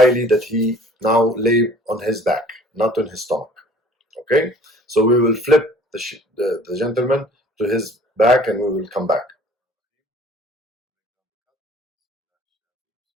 that he now lay on his back, not on his stomach. Okay? So we will flip the gentleman to his back and we will come back.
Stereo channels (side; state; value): both; normal; correlation 0.52